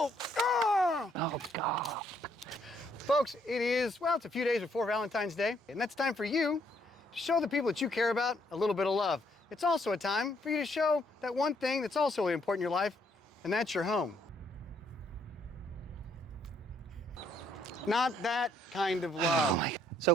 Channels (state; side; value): normal; both; correlation 0.69